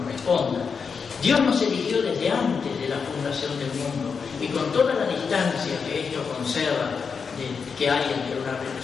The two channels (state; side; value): quieter; right; 5.7 dB